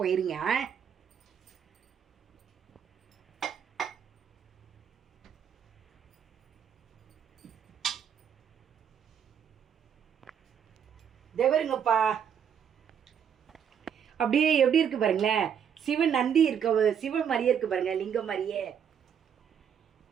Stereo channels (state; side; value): quieter; left; 8.2 dB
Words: இருங்க. தேவருங்கப்பா, அப்படியே எப்படி இருக்கு பாருங்களேன். சிவன் நந்தி இருக்க, சிவன் மாதிரியே இருக்கு பாருங்க, லிங்கம் மாதிரியே.